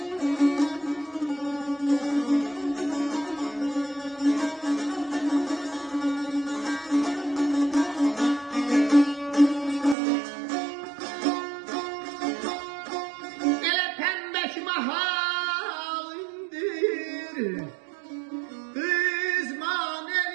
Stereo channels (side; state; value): left; drops out; at 10.0 s